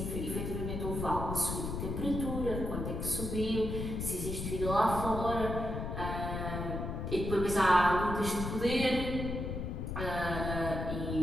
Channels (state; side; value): noise; left; rumble, 4 dB below the sound